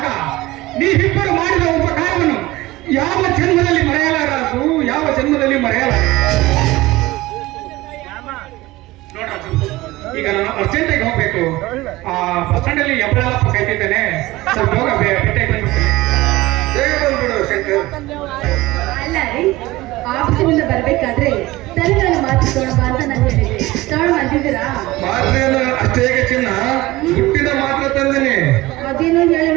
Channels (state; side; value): quieter; left; 19.0 dB